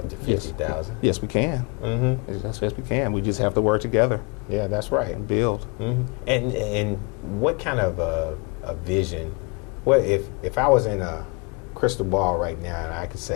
to 50,000. Yes, we can. Yes, we can. We just have to work together. Yeah, that's right. And build. And what kind of a vision? Well, if I was in a crystal ball right now and I could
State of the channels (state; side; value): quieter; right; 32.0 dB